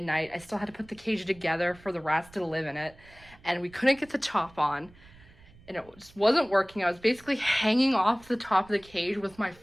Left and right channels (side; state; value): right; noise; rumble, 25 dB below the sound